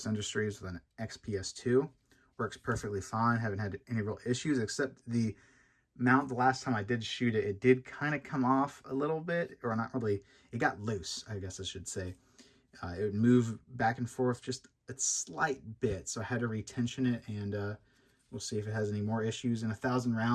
Industries with an XPS2. Works perfectly fine. Haven't had any real issues, except the mount. The last time I did shoot it, it did kind of come off a little bit, or not really. It got loose, I guess I should say. It would move back and forth just a slight bit, so I had to retension it, and we'll see if it has any more issues. In 1,000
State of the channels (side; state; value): both; identical; correlation 1.00